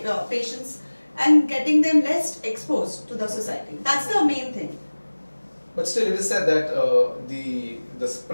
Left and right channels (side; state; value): both; inverted; correlation -1.00